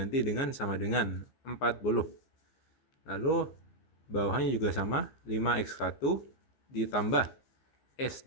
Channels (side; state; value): right; late; 15 ms